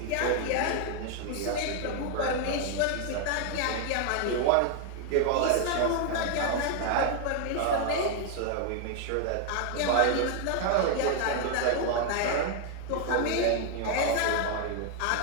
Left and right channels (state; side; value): different; both; correlation 0.00